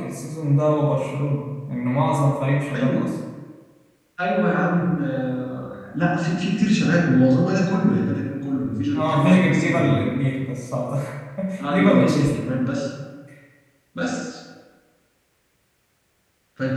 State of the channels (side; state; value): both; identical; correlation 1.00